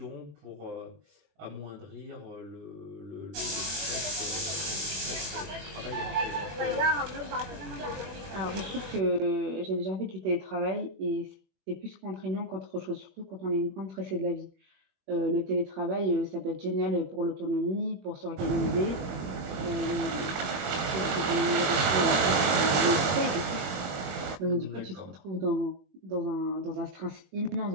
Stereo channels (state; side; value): late; left; 22 ms